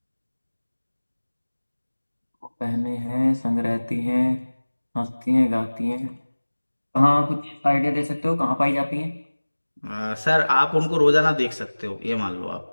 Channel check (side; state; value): both; inverted; correlation -1.00